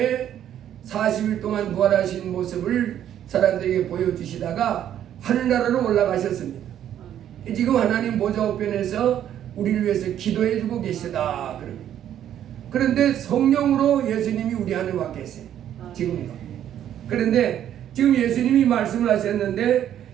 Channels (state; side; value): quieter; left; 10.6 dB